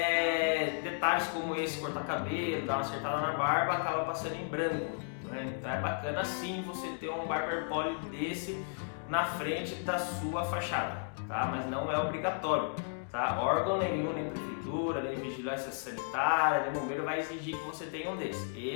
detalhes como esse, cortar cabelo, dar uma acertada na barba, acaba passando em branco, né? Então é bacana sim você ter um Barber Poly desse na frente da sua fachada, tá? Mas não é obrigatório, tá? Órgão nenhum, nem prefeitura, nem vigilância sanitária, nem bombeiro vai exigir que você tenha um desse.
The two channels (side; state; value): right; silent; digital silence